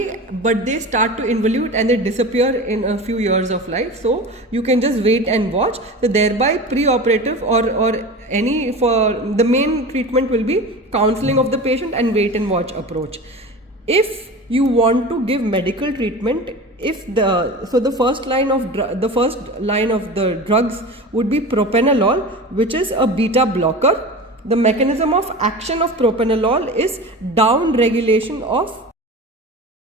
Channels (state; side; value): normal; both; correlation 0.32